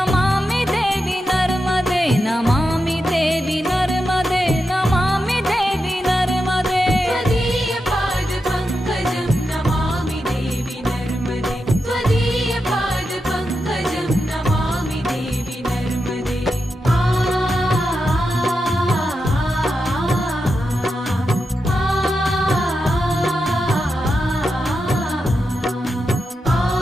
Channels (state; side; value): normal; both; correlation 0.88